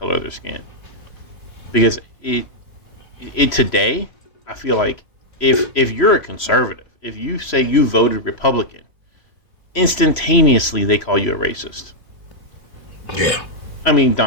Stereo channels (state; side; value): late; right; 3.0 ms